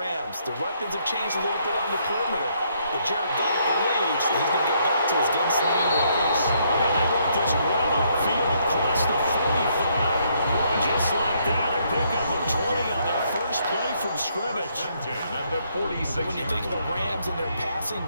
The weapons have changed a little bit on the perimeter, but Jared Goff believes that he's going to get back to his gunslinging ways. And they worked this well upfield across the 45. Just like that, a pickup of 20 on their first play from scrimmage. At the 46. When you think of the Rams and their passing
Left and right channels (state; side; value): inverted; both; correlation -0.71